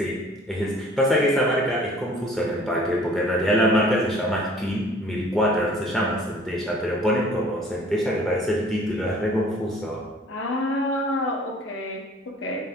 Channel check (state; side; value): normal; both; correlation 0.52